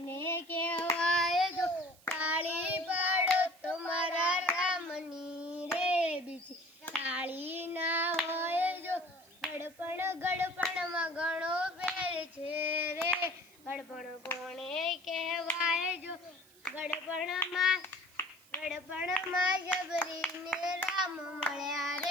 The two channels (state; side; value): noise; right; hiss, 26 dB below the sound